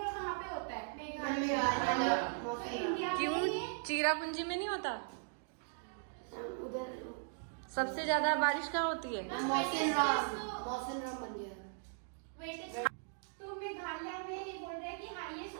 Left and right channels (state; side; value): silent; left; digital silence